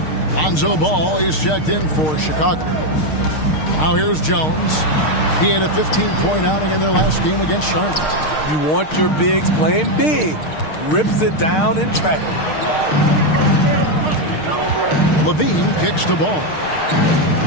Lonzo Ball is checked in for Chicago. Now here's Jones. He had a 15-point outing in their last game against Charlotte. You want your bigs playing big. Rips it down in traffic. Levine kicks the ball.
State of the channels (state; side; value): late; right; 6.5 ms